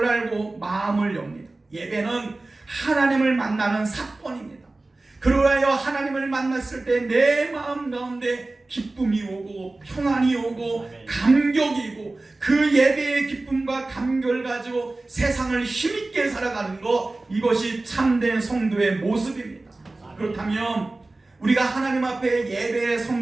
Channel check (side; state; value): left; quieter; 3.1 dB